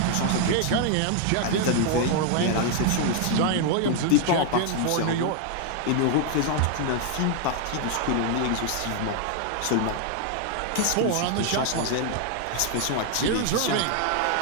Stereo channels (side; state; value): both; different; correlation 0.00